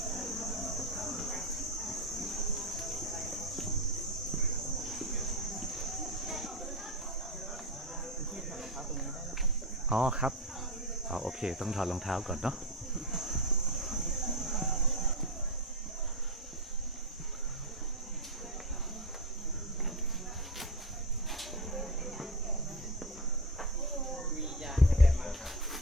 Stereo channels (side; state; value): both; normal; correlation 0.19